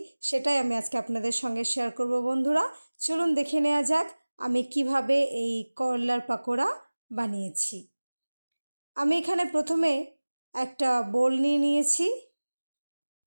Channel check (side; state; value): both; inverted; correlation -1.00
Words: সেটাই আমি আজকে আপনাদের সঙ্গে শেয়ার করব বন্ধুরা। চলুন দেখে নেওয়া যাক আমি কিভাবে এই করলার পাকোড়া বানিয়েছি। আমি এখানে প্রথমে একটা বোল নিয়ে নিয়েছি।